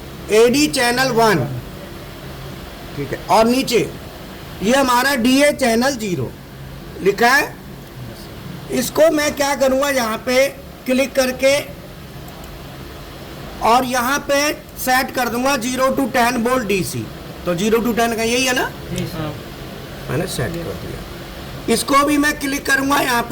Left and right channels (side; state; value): both; identical; correlation 1.00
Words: AD चैनल 1, ठीक है। और नीचे ये हमारा DA चैनल 0 लिखा है। इसको मैं क्या करूँगा, यहाँ पे क्लिक करके और यहाँ पे सेट कर दूंगा 0 to 10 वोल्ट DC। तो 0 to 10 का यही है ना, मैंने सेट कर दिया। इसको भी मैं क्लिक करूँगा, यहाँ